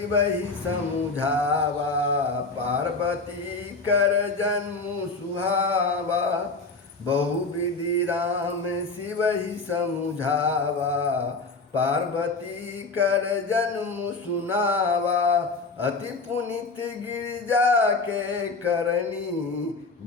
ही समुझावा, पार्वती कर जन्म सुहावा। बहुविधि राम शिव ही समुझावा, पार्वती कर जन्म सुनावा। अति पुनित गिरिजा के करनी,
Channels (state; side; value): quieter; right; 3.8 dB